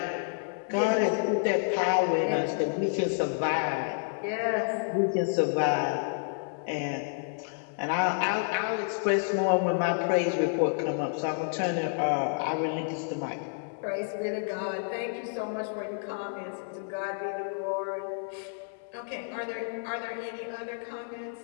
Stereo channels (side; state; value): right; silent; 58 dB below the other